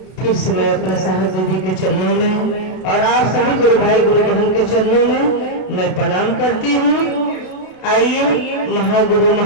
से मैं अपने साहब दीदी के चरणों में और आप सभी गुरु भाई गुरु बहन के चरणों में मैं प्रणाम करती हूँ। आइए महागुरु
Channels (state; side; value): late; right; 32 ms